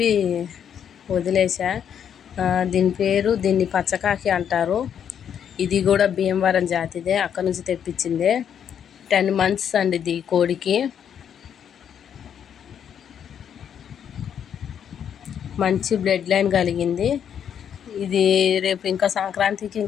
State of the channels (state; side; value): quieter; right; 8.6 dB